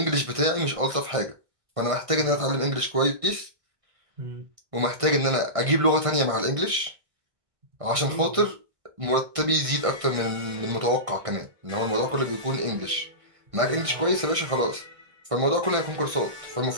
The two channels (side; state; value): left; late; 1.5 ms